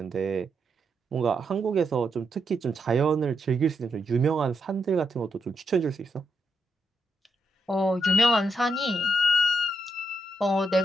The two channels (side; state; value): both; normal; correlation 0.80